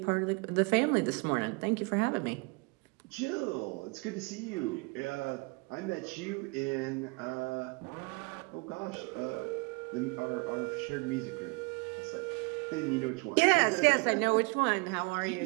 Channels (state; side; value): quieter; left; 29.0 dB